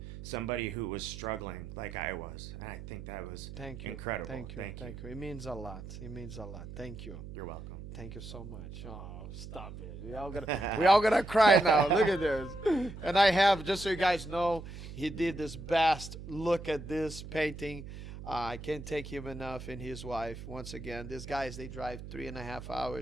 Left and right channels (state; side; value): noise; right; hum, 11 dB below the sound